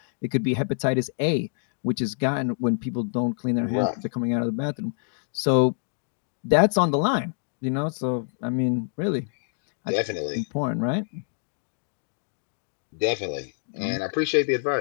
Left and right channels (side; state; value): right; silent; digital silence